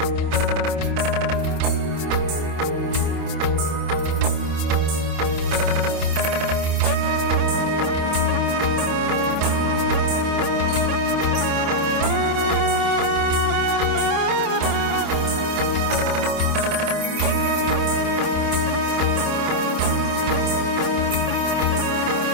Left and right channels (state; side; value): late; left; 27 ms